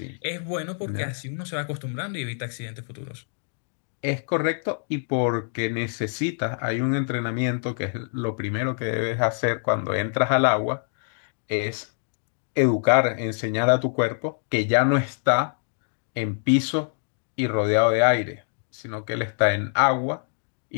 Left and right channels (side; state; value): right; silent; digital silence